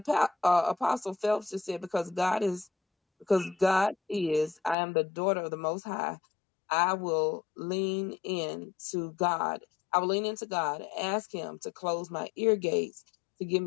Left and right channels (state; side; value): drops out; right; at 4.8 s